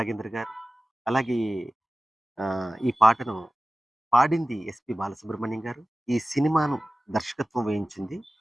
గారు. అలాగే ఈ పాటను పాడింది ఎస్‌పి బాలసుబ్రహ్మణ్యం గారు. ఈ సినిమాను దర్శకత్వం వహించింది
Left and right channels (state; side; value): normal; both; correlation 0.97